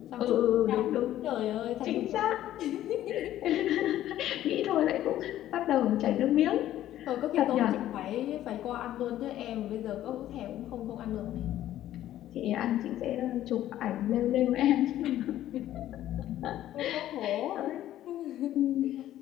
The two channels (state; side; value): quieter; right; 13.0 dB